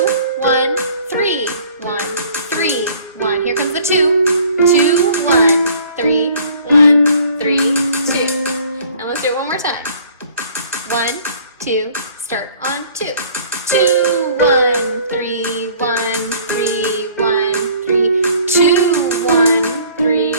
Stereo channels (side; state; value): both; inverted; correlation -0.54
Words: 1, 3, 1, 3, 1. Here comes the 2. 2, 1, 3, 1, 3, 2. And let's do it one more time. 1, 2, start on 2. 2, 1, 3, 1, 3, 1, 3, 2, 1,